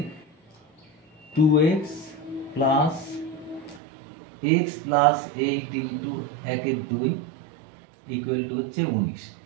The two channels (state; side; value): drops out; left; at 3.8 s